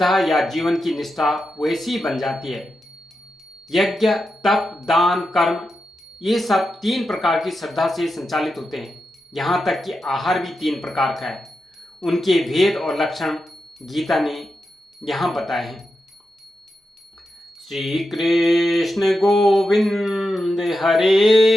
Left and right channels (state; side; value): normal; both; correlation 0.89